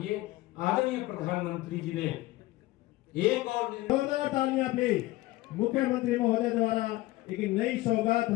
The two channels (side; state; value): right; quieter; 18.5 dB